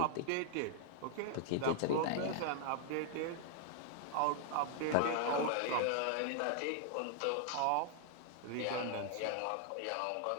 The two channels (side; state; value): both; different; correlation 0.00